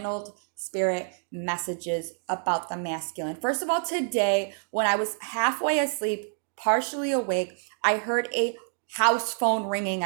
spirit messages about the masculine. First of all, today, when I was halfway asleep, partially awake, I heard a house phone ringing.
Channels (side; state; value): left; silent; 60 dB below the other